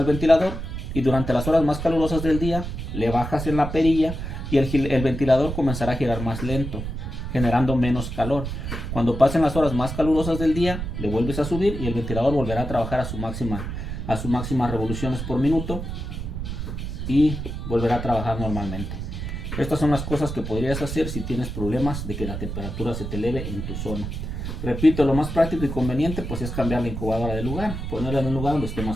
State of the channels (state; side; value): noise; right; rumble, 6 dB below the sound